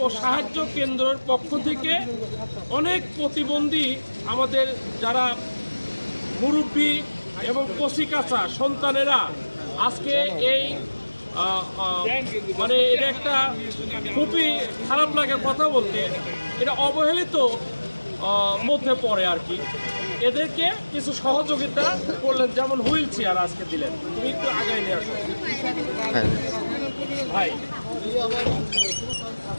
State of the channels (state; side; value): inverted; both; correlation -1.00